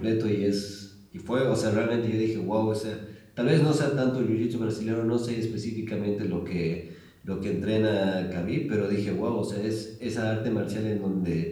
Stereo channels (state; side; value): identical; both; correlation 1.00